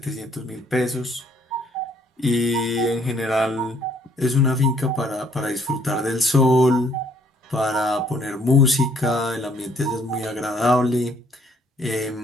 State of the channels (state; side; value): normal; both; correlation 0.64